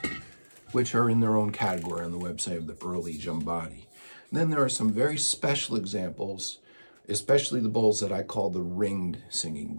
which are in their own category on the website of the early Jambati. Then there are some very special examples, especially the bowls that I call the ringed singing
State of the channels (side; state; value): both; inverted; correlation -1.00